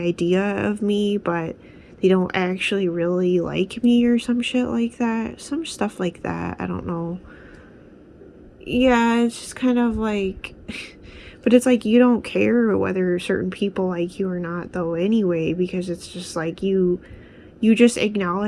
of me, but they don't actually really like me or some shit like that. Some stuff like that. I don't know. Yeah, it's just kind of like but it's like you don't care whether certain people like you or not though anyway, because it's just like you just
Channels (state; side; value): identical; both; correlation 1.00